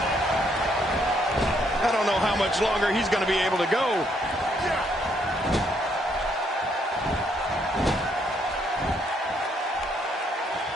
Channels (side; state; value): both; normal; correlation 0.71